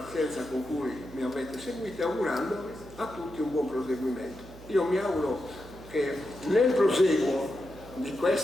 con cui mi avete seguito e augurandovi a tutti un buon proseguimento. Io mi auguro che nel proseguo di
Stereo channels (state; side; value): noise; right; hum, 18 dB below the sound